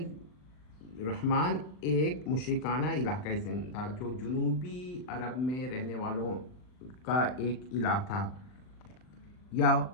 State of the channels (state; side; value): late; right; 39 ms